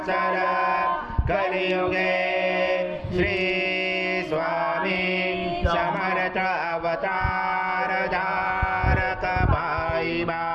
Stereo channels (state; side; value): identical; both; correlation 1.00